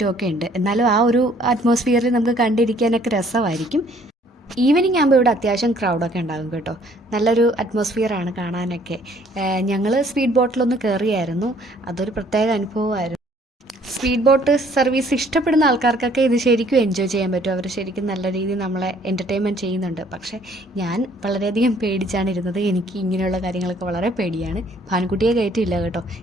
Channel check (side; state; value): both; normal; correlation 0.60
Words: ഉണ്ട്. എന്നാലും ആ ഒരു അറ്റ്മോസ്ഫിയറിൽ നമുക്ക് കണ്ടിരിക്കാനൊക്കെ രസമായിരിക്കും. ഈവനിങ് ആകുമ്പോൾ ഇവിടെ അത്യാവശ്യം ക്രൗഡൊക്കെ ഉണ്ടാകും കേട്ടോ. നല്ലൊരു അറ്റ്മോസ്ഫിയറാണ് കാണാനൊക്കെ. ഞങ്ങൾ സ്പീഡ് ബോട്ടിലൊന്ന് കയറിയായിരുന്നു. അതൊരു പ്രത്യേക അനുഭവമായിരുന്നു. സ്പീഡ് ബോട്ട് സർവീസ് ഇഷ്ടപ്പെടുന്ന ആൾക്കാർക്കൊക്കെ ഇത് ശരിക്കും എൻജോയ് ചെയ്യാൻ പറ്റും. അവർ ശരിക്കും നല്ല രീതിയിൽ നമ്മളെ എൻ്റർടൈൻമെൻറ്റ് ചെയ്യുന്നുണ്ട്. പക്ഷേ ഞാൻ വളരെയധികം പേടിച്ചാണ് ഇരുന്നത്. എനിക്ക് ഇങ്ങനെയുള്ള കാര്യങ്ങളൊക്കെ വളരെ പേടിയാണ്. ഭാനുക്കുട്ടിയെ കയറ്റിയില്ല കേട്ടോ.